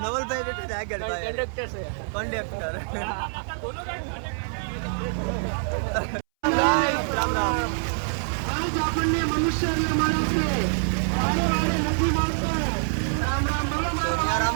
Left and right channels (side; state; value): left; silent; 61 dB below the other